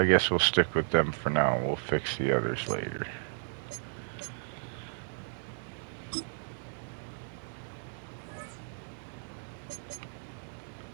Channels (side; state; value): left; silent; digital silence